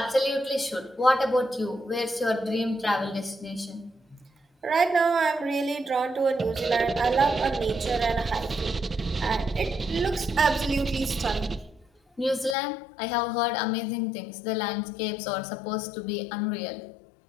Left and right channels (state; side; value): drops out; right; at 12.6 s